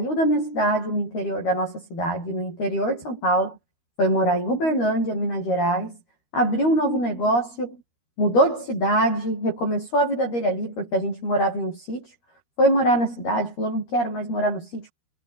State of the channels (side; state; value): right; late; 13 ms